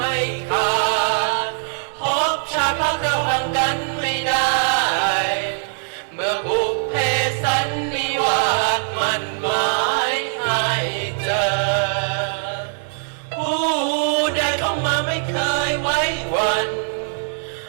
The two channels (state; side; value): silent; left; digital silence